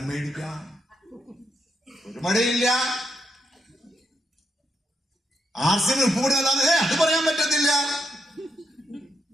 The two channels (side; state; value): both; normal; correlation 0.81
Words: മേടിക്കാം, ഒരു മഴയില്ല. ആർസിന് ഉപ്പ് കൂടി നല്ലാതെ അത് പറയാൻ പറ്റത്തില്ല,